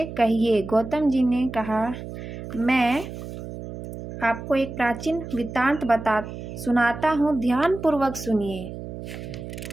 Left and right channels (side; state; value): right; noise; hum, 10 dB below the sound